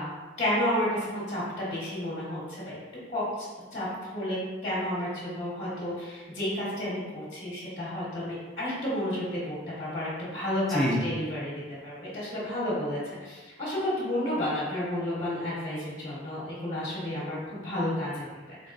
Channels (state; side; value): normal; both; correlation 0.43